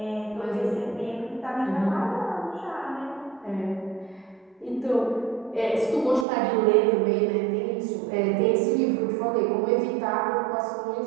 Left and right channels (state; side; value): drops out; left; at 6.2 s